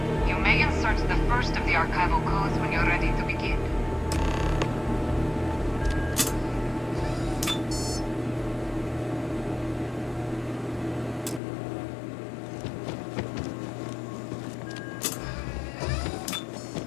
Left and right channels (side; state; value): right; drops out; at 11.4 s